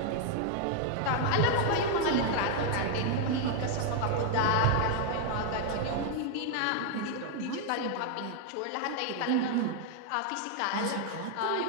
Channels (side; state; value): both; different; correlation 0.00